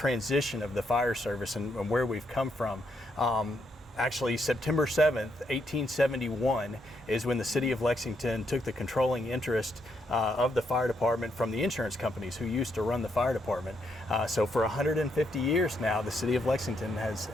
of the fire service and where we've come from. Actually, September 7th, 1871 is when the city of Lexington took the controlling interest of the fire department from the insurance companies who used to run the fire department. So for 150 years now, the city of Lexington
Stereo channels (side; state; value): both; normal; correlation 0.77